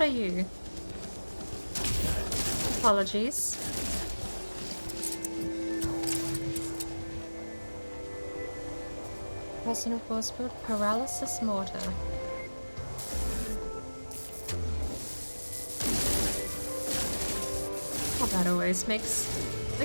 are you? Apologies. Personal force field, paralysis mortar. Oh, that always makes the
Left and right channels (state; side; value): inverted; both; correlation -1.00